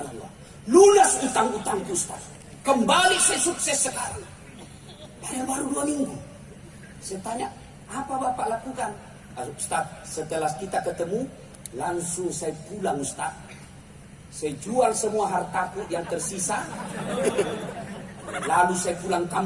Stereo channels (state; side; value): identical; both; correlation 1.00